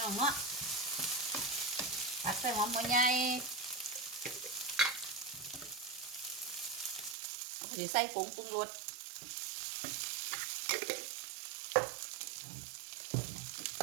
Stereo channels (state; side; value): drops out; left; at 7.2 s